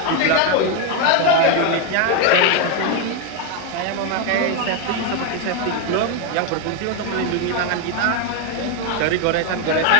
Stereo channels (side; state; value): both; different; correlation 0.01